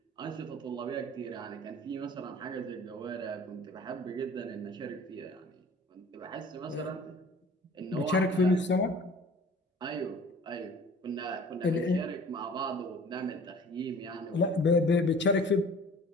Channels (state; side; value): normal; both; correlation 0.47